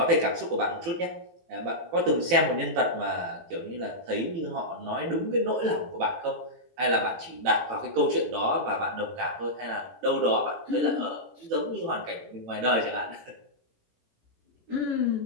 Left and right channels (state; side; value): late; left; 18 ms